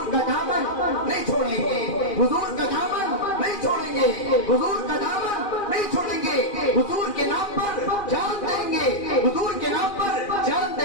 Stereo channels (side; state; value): right; late; 2.4 ms